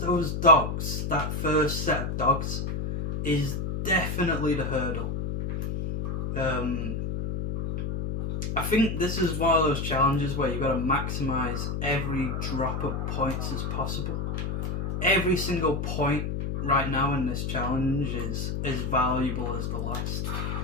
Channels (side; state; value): left; noise; hum, 2 dB below the sound